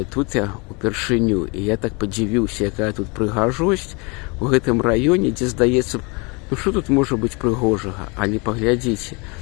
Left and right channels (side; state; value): right; quieter; 29.7 dB